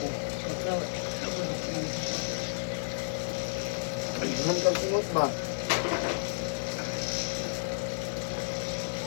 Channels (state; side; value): silent; right; digital silence